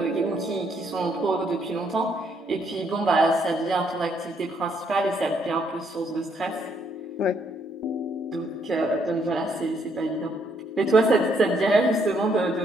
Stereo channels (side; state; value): both; normal; correlation 0.72